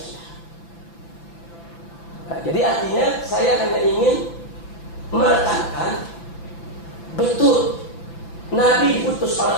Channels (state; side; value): late; right; 5.9 ms